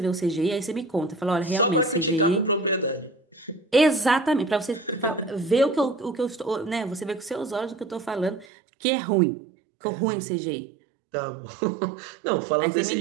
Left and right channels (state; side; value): drops out; left; at 8.5 s